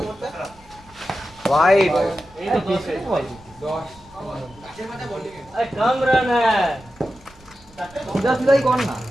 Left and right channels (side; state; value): right; noise; rumble, 25 dB below the sound